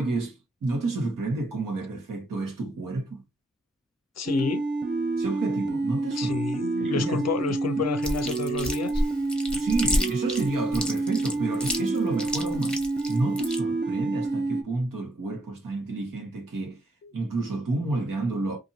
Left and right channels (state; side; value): normal; both; correlation 0.73